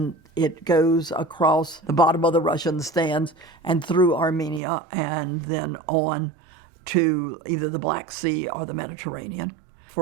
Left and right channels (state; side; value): drops out; left; at 4.6 s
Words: it goes across the bottom of the Russian stands and through Armenia and then on to either the Black Sea or the Mediterranean.